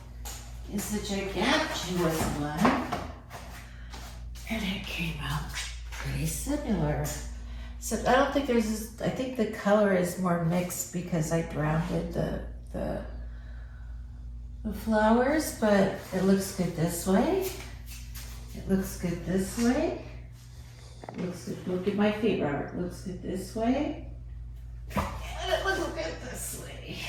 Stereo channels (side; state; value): both; identical; correlation 1.00